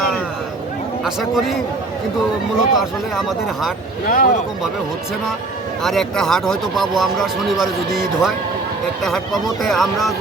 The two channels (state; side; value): quieter; left; 3.3 dB